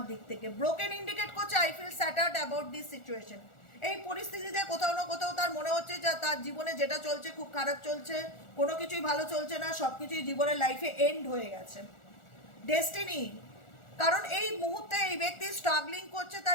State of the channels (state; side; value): late; right; 1.4 ms